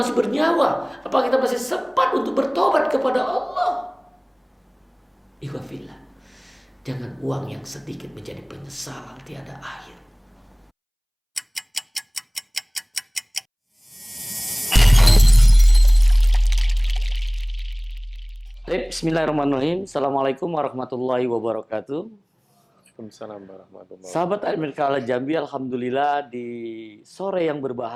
bernyawa? Apakah kita masih sempat untuk bertobat kepada Allah? Ikhwafillah. Jangan uang yang sedikit menjadi penyesalan tiada akhir. Bismillahirrahmanirrahim. Assalamualaikum warahmatullahi wabarakatuh. Waalaikumsalam warahmatullahi wabarakatuh. Sahabat AMDK Al Jambi, alhamdulillah di sore yang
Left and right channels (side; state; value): both; identical; correlation 1.00